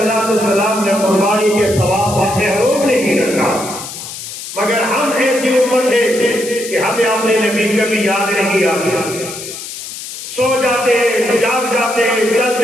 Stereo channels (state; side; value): noise; left; hiss, 10 dB below the sound